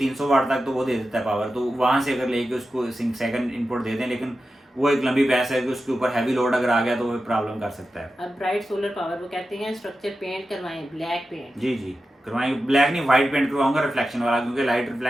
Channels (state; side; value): normal; both; correlation 0.92